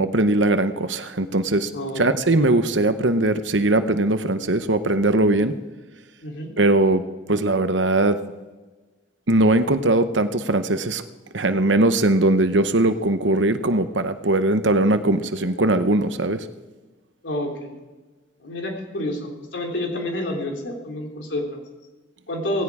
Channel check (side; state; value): both; normal; correlation 0.25